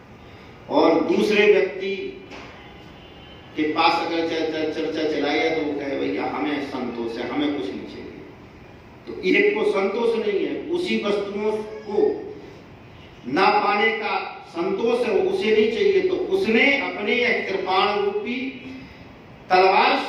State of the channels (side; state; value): both; identical; correlation 1.00